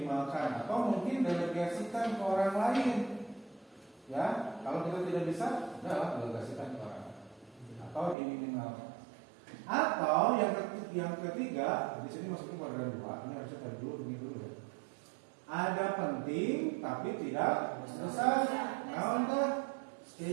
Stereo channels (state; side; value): drops out; left; at 8.2 s